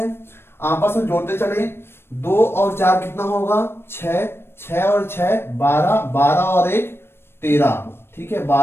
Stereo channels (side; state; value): right; late; 0.12 ms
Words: आपस में जोड़ते चले, 2 और 4 कितना होगा? 6, 6 और 6 12, 12 और 1 13। ठीक है,